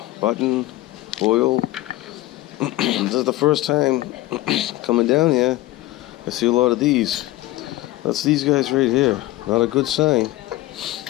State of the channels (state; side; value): quieter; right; 17.5 dB